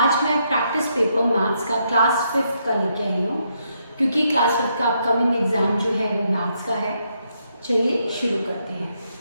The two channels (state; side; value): inverted; both; correlation -0.77